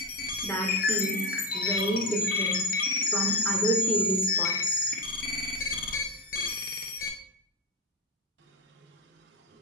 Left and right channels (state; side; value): normal; both; correlation 0.10